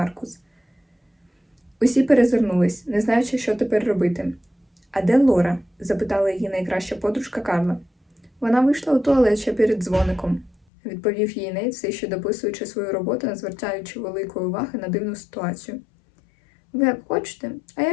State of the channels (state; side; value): drops out; right; at 10.6 s